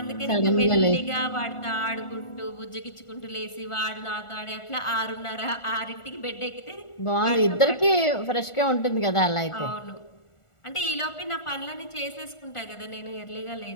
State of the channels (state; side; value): late; right; 1.4 ms